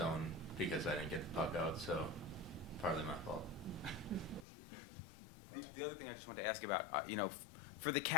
because I didn't get the puck out, so partly my fault. The other thing I just wanted to ask about, for the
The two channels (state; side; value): drops out; right; at 4.5 s